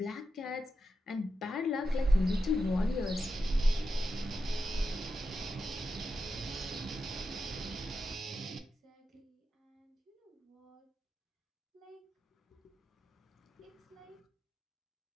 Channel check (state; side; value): normal; both; correlation 0.89